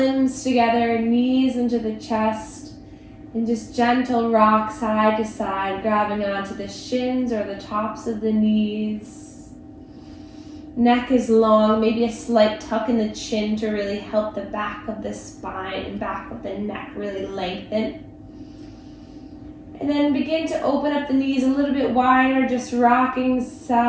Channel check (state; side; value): identical; both; correlation 1.00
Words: together, knees into the chest, and just gentle rock side to side, grabbing onto the shins or the tops of the knees. Neck is long, maybe a slight tuck in the chin to really help the back of the spine and back of the neck really lengthen. And then begin to open up the knees a little bit wider, just rocking